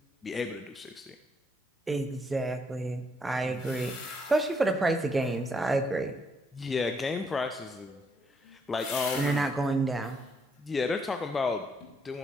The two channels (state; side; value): normal; both; correlation 0.73